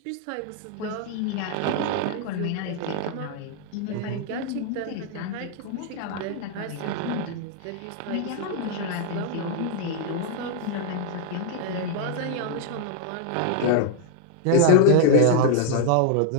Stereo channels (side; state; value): both; different; correlation 0.00